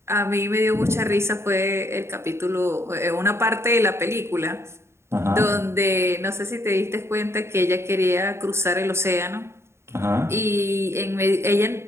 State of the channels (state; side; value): late; left; 0.13 ms